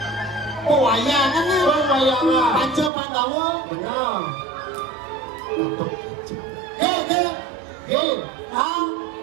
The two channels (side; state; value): left; drops out; at 2.9 s